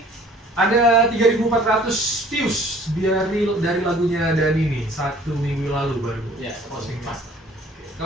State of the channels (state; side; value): normal; both; correlation 0.53